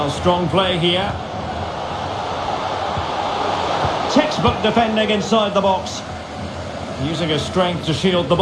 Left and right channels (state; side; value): identical; both; correlation 1.00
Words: strong play here. Textbook defending inside the box. Using his strength to shield the